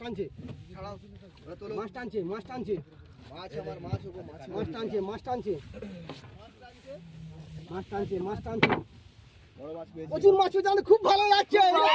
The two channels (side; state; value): both; identical; correlation 1.00